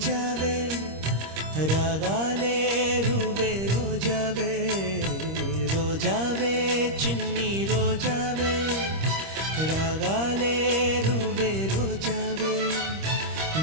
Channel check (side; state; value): left; late; 26 ms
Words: రాగాలే రువే రోజావే రోజావే చిన్ని రోజావే రాగాలే రువే రోజావే